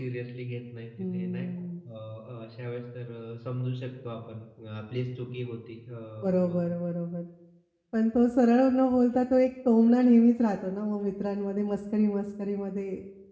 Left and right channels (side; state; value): both; identical; correlation 1.00